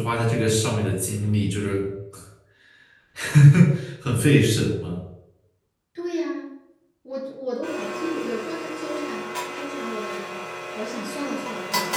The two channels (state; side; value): identical; both; correlation 1.00